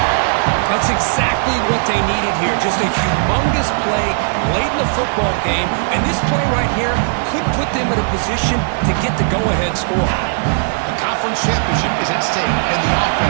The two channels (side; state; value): left; silent; digital silence